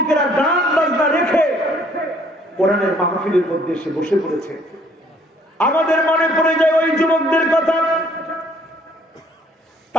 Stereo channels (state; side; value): normal; both; correlation 0.61